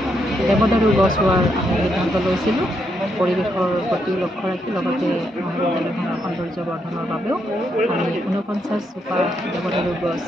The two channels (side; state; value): both; normal; correlation 0.78